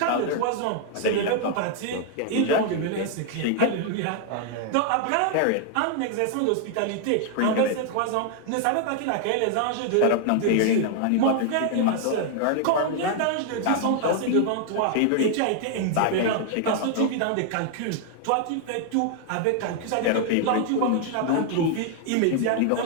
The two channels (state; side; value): different; both; correlation 0.00